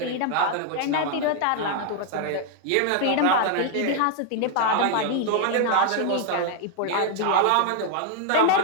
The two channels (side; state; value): both; different; correlation 0.00